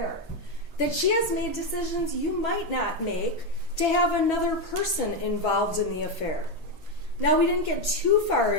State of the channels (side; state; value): right; late; 2.7 ms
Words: that she has made decisions you might not make to have another person involved in the affair. Now, we didn't get too far